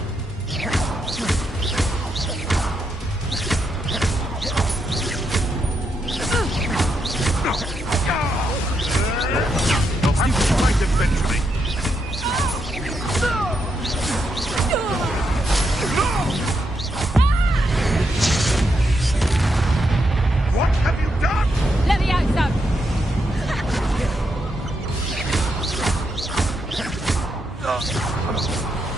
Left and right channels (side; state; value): both; normal; correlation 0.81